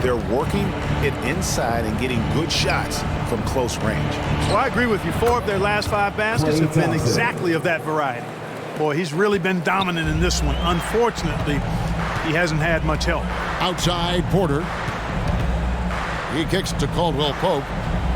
working it inside and getting good shots from close range. Well, I agree with you. 4 of their last 5 baskets have been exactly of that variety. Boy, he's really been dominant in this one. Unfortunately, he hasn't had much help. Outside Porter. He kicks to Caldwell Pope.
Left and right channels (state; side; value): identical; both; correlation 1.00